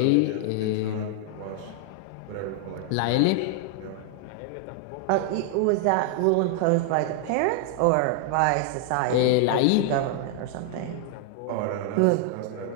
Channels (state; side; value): different; both; correlation 0.00